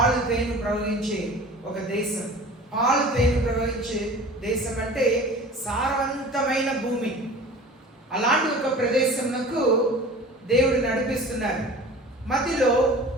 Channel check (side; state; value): both; normal; correlation 0.41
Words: తేనె ప్రవహించే ఒక దేశం. పాలు తేనె ప్రవహించే దేశం అంటే సారవంతమైన భూమి. అలాంటి ఒక ప్రదేశంకు దేవుడు నడిపిస్తున్నారు. మధ్యలో